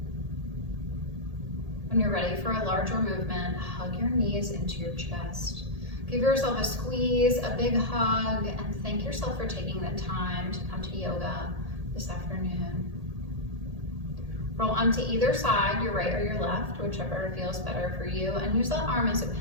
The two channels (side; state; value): left; late; 1.8 ms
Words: When you're ready for a larger movement, hug your knees into your chest. Give yourself a squeeze, a big hug, and thank yourself for taking the time to come to yoga this afternoon. Roll onto either side, your right or your left, whichever feels better for you, and use that arm as a